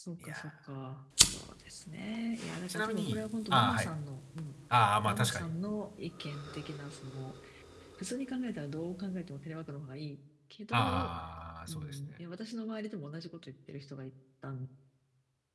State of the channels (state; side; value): identical; both; correlation 1.00